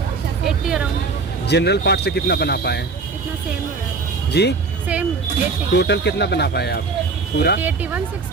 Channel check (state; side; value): quieter; left; 4.3 dB